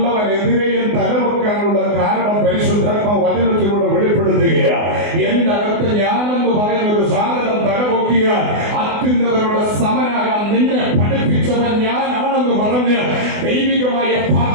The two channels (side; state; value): left; late; 24 ms